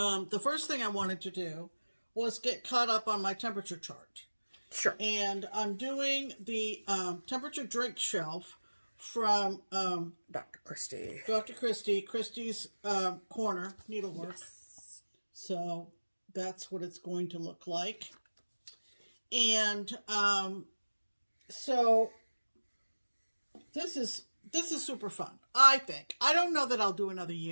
first thing I wanted to do was get caught up on my temperature chart. Sure. And I'm doing the temperature drink shelf from Dr. Christie. Christie's Corner Needlework. Yes. So that's what it's going to look like. And so this is super fun, I think. I don't know that I'll do another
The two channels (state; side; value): inverted; both; correlation -1.00